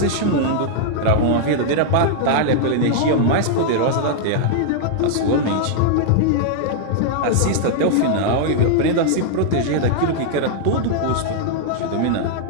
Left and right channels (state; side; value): different; both; correlation -0.01